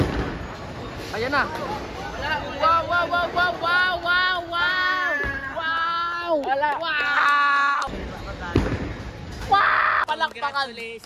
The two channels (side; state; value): both; identical; correlation 1.00